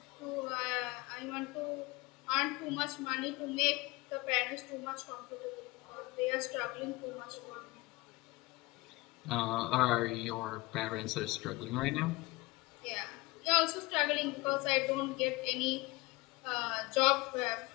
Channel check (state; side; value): quieter; right; 22.6 dB